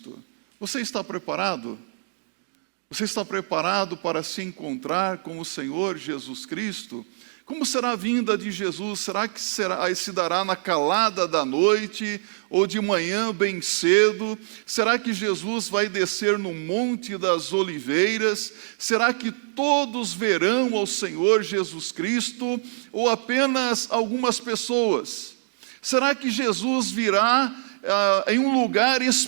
Você está preparado? Você está preparado para se encontrar com o Senhor Jesus Cristo? Como será a vinda de Jesus? Será que se dará na calada da noite ou de manhã bem cedo? Será que Jesus vai descer no Monte das Oliveiras? Será que todos verão ao Senhor Jesus Cristo ou apenas algumas pessoas? Será que Jesus virá em um lugar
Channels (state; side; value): silent; left; digital silence